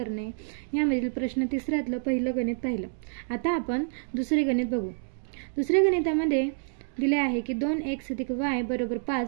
यामधील प्रश्न तिसऱ्यातलं पहिलं गणित पाहिलं। आता आपण दुसरे गणित बघू। दुसऱ्या गणितामध्ये दिले आहे की 2x + y =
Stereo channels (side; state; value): left; silent; digital silence